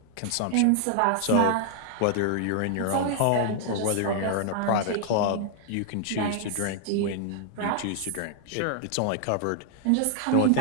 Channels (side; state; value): both; different; correlation 0.00